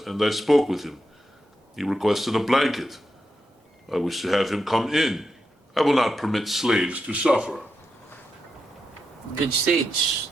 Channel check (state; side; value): normal; both; correlation 0.86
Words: I spoke with him. He requested a blanket. I wish to have him come in. I will not permit slaves to suffer. Good sage,